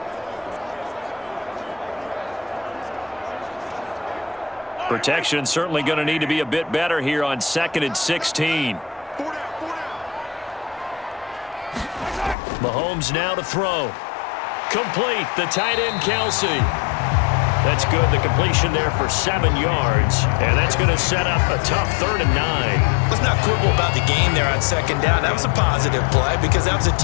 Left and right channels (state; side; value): drops out; right; at 12.4 s